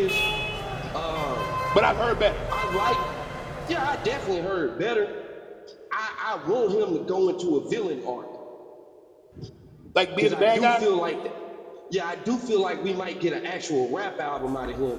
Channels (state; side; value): identical; both; correlation 1.00